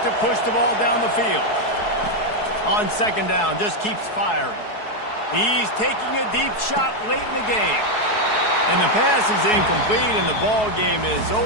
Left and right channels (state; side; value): late; right; 4.7 ms